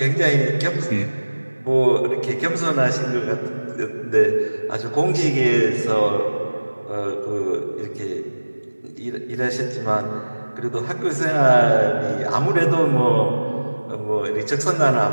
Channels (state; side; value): inverted; both; correlation -1.00